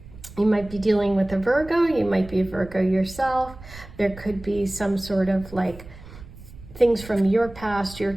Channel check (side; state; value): right; noise; rumble, 17 dB below the sound